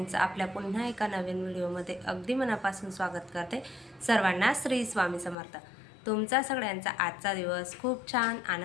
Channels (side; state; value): right; drops out; at 5.4 s